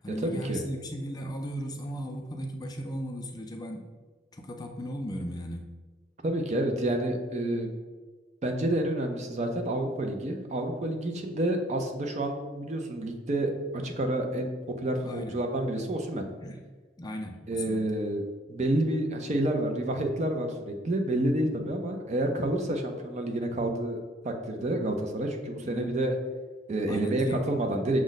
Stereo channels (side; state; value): both; normal; correlation 0.60